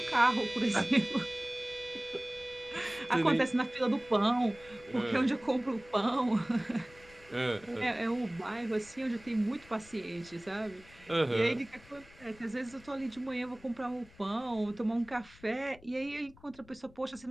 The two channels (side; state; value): left; noise; rumble, 24 dB below the sound